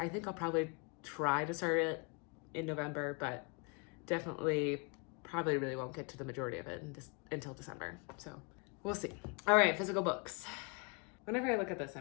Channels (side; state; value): right; quieter; 32.8 dB